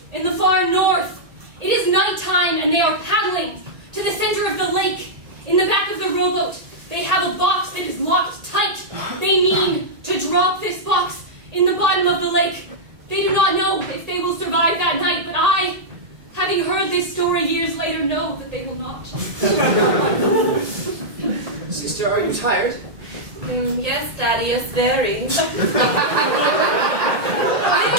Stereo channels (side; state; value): left; late; 1.8 ms